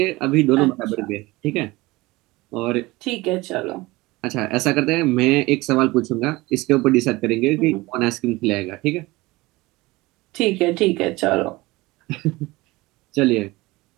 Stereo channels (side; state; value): left; quieter; 21.0 dB